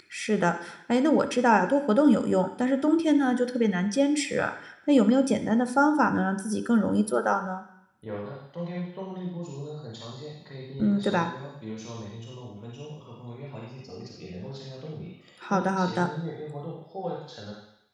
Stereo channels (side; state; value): both; identical; correlation 1.00